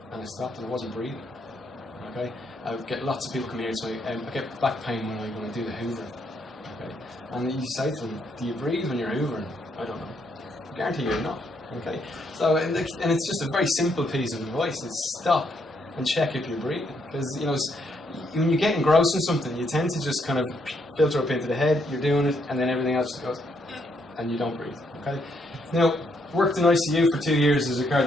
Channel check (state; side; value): normal; both; correlation 0.74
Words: and I stopped and I wasn't breathing. Okay. I get lots of people come here and say, I get back pain when I do the hoovering. Okay. And you say to them, do you breathe when you're hoovering? I don't know. I guarantee you're not. Okay. So and it's just a very simple piece of advice. It's stop and check if you're breathing, because when you get engrossed in something, you tend to just kind of filter up into the head. You're doing it, and then everything else just goes, and you don't breathe. Okay. Now, worked in ICU for 2 years as a